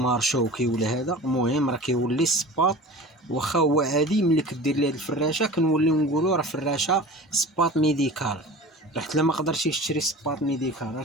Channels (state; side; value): normal; both; correlation 0.37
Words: شوكي ولا هذا، المهم راه كيولي السباط واخا هو عادي. ملي كدير ليه هاد الفراشه كنوليو نقولوا راه فراشه سباط ميديكال. راه حتى ما قدرتيش تشري سباط ميديكال، راه